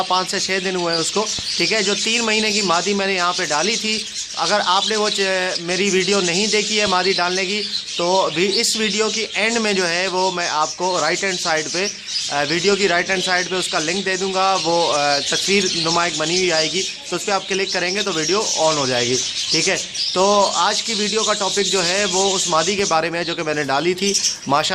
5 से 6 दिन हुए हैं उसको। ठीक है, जो 3 महीने की मादी मैंने यहाँ पे डाली थी। अगर आपने वो मेरी वीडियो नहीं देखी है मादी डालने की, तो भी इस वीडियो की एंड में जो है वो मैं आपको राइट हैंड साइड पे वीडियो की राइट हैंड साइड पे उसका लिंक दे दूंगा। वो तस्वीर नुमा एक बनी हुई आएगी, तो उस पर आप क्लिक करेंगे तो वीडियो ऑन हो जाएगी। ठीक है, तो आज की वीडियो का टॉपिक जो है वो उस मादी के बारे में है जो कि मैंने डाली थी।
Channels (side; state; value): both; identical; correlation 1.00